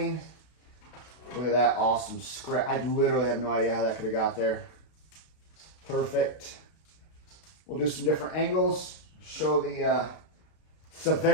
Look at that awesome scratch. I literally have no idea how that could have got there. Perfect. We'll do some different angles, show the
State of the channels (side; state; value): right; late; 32 ms